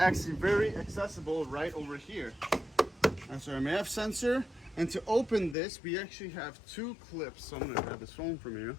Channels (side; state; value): right; drops out; at 5.6 s